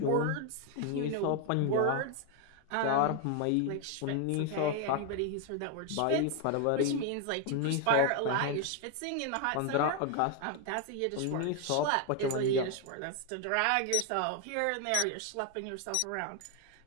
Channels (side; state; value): both; different; correlation 0.01